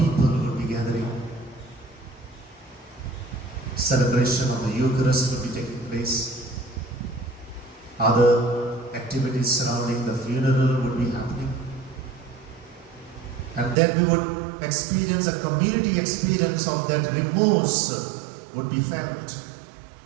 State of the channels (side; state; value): left; drops out; at 13.8 s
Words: would be gathering. Celebration of the Eucharist would be taking place. Other activities surrounding the funeral would be happening. And then we would experience a community experience of that remorse would be felt.